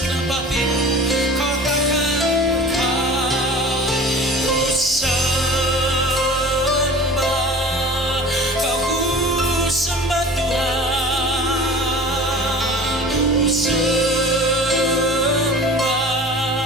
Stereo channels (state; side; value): normal; both; correlation 0.41